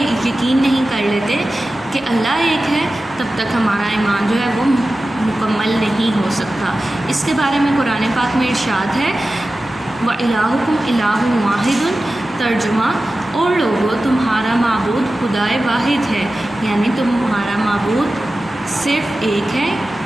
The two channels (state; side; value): normal; both; correlation 0.95